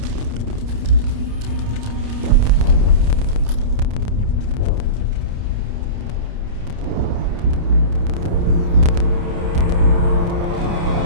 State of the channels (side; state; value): left; late; 29 ms